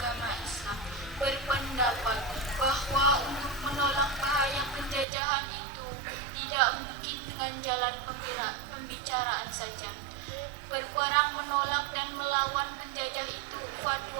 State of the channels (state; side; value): drops out; left; at 5.1 s